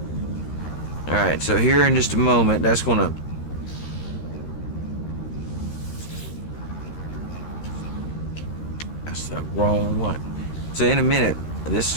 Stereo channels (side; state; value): right; late; 13 ms